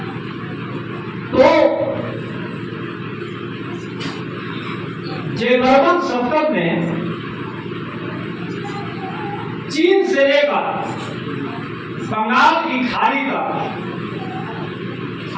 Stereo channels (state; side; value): identical; both; correlation 1.00